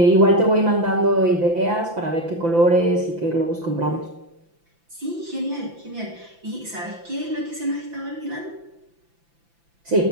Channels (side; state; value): left; late; 5.9 ms